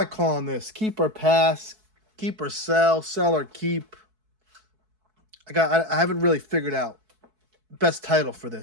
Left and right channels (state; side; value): late; left; 4.6 ms